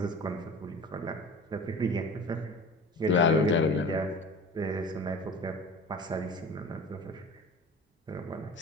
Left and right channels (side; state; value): both; normal; correlation 0.38